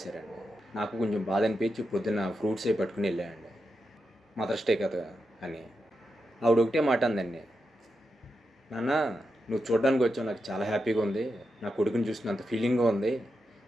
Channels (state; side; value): normal; both; correlation 0.87